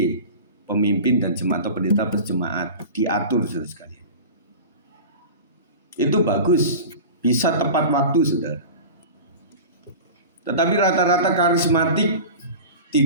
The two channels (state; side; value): inverted; both; correlation -0.34